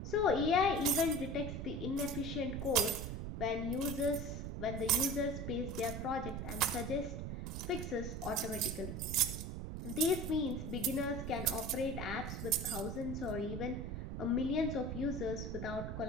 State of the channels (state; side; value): noise; right; rumble, 5 dB below the sound